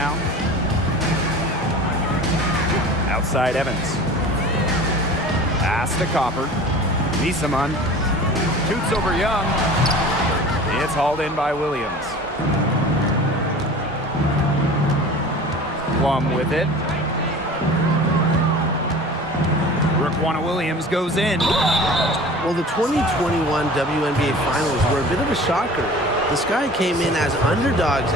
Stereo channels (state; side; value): normal; both; correlation 0.40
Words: Outside Evans. Pass to Copper. Misaman shoots over Young. It's hauled in by Williams. Plum with it. Raquana Williams goes in. Well, the 2021 WNBA Finals were a bit of a shocker. The Sky came in as underdogs